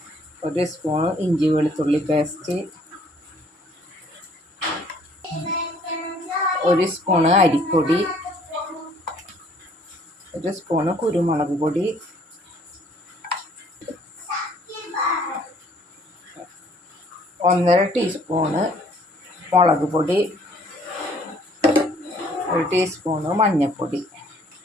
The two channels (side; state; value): both; normal; correlation 0.60